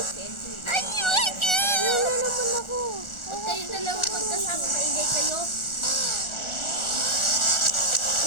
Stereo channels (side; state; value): right; late; 1.4 ms